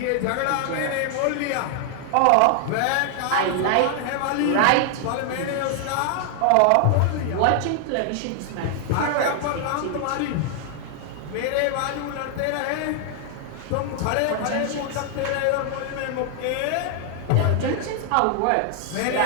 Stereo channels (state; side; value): different; both; correlation 0.00